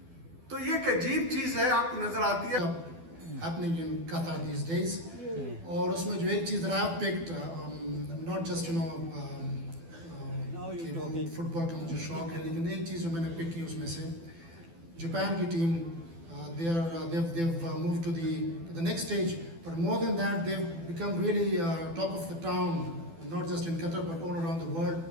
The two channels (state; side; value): late; left; 12 ms